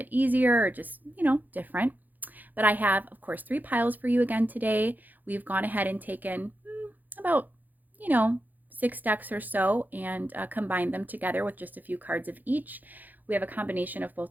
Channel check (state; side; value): late; left; 0.084 ms